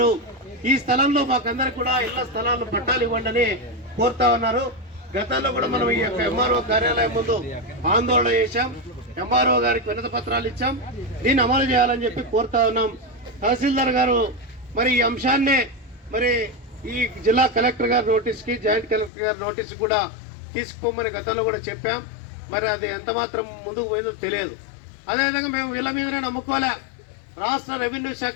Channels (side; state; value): right; drops out; at 19.1 s